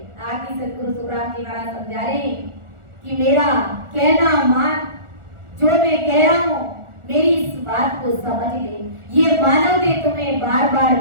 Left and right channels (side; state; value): left; late; 1.4 ms